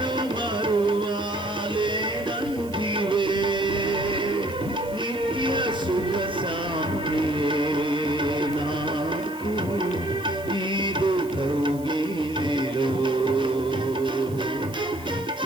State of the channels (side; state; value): right; noise; hiss, 21 dB below the sound